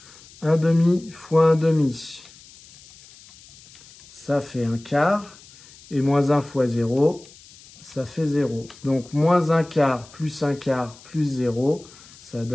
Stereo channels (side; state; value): left; noise; hiss, 23 dB below the sound